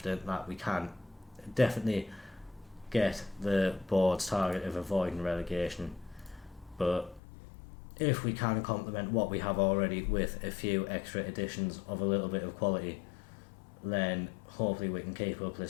that we can definitely get the board's target of avoiding relegation. But if we can complement what we have already with a few extra additions of a little bit of quality, then hopefully we can keep up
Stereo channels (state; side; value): drops out; right; at 7.2 s